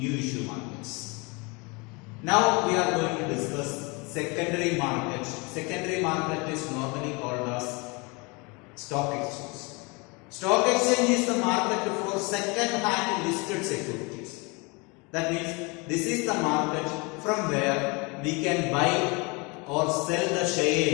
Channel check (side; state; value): right; quieter; 28.5 dB